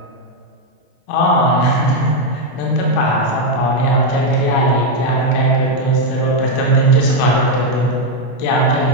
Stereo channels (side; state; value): right; late; 24 ms